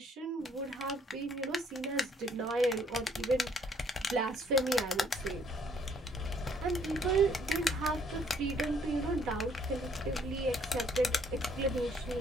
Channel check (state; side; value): normal; both; correlation 0.65